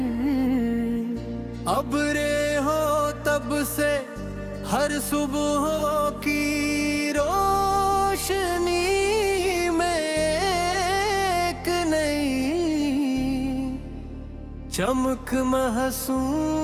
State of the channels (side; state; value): both; identical; correlation 1.00